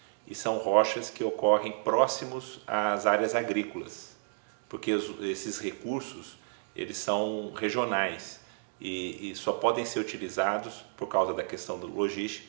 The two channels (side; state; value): left; silent; digital silence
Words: E são rochas que ocorrem próximos às áreas agrícolas, porque esses recursos eles são regionais e só podem ser utilizados por causa da questão da